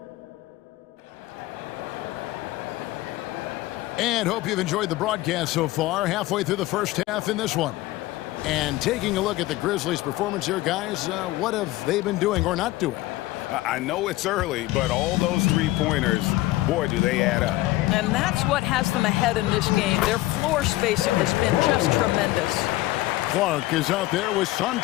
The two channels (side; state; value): right; quieter; 17.8 dB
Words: And hope you've enjoyed the broadcast so far. Halfway through the first half in this one. And taking a look at the Grizzlies' performance here, guys, what have they been doing or not doing? I know it's early, but all those three-pointers, boy, do they add up. And that's what has them ahead in this game. Their floor spacing has been just tremendous. Clark is out there with